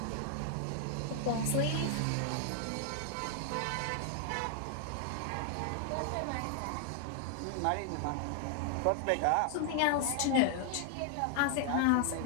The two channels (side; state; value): both; different; correlation 0.00